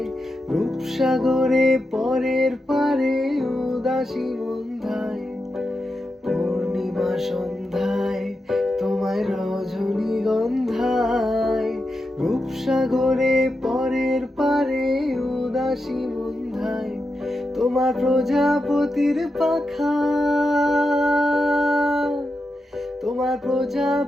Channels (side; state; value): both; normal; correlation 0.88